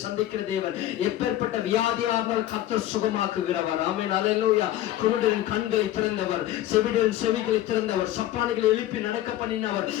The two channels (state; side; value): quieter; right; 13.5 dB